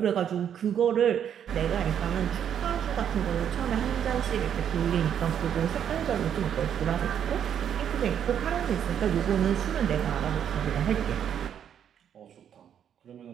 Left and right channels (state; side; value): quieter; left; 9.0 dB